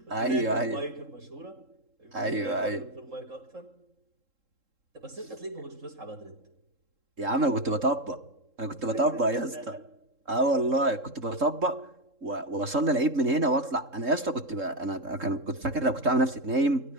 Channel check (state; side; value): late; left; 3.7 ms